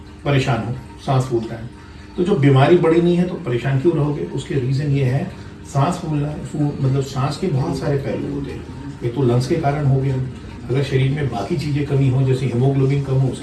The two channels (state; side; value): identical; both; correlation 1.00